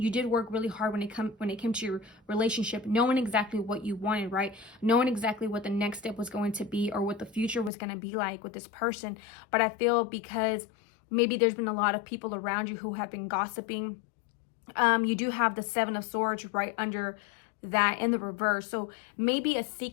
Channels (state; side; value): drops out; right; at 7.7 s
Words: did work really hard when it came to your relationship, knowing exactly what you wanted, right? Knowing exactly what the next step was going to be or what the future was going to be like with this person. But I feel because maybe there's been a lot of people around you who have been gossiping. You do have the Seven of Swords right under that in the reverse, so maybe a